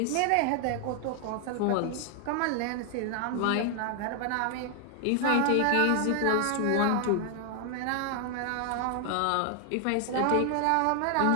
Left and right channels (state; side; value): different; both; correlation 0.00